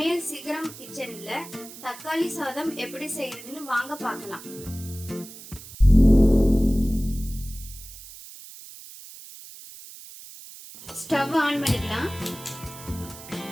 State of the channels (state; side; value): noise; right; hiss, 16 dB below the sound